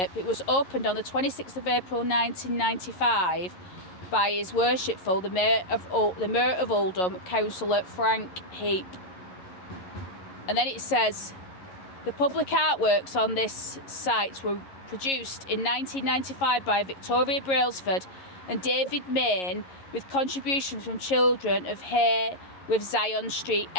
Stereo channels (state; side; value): late; right; 11 ms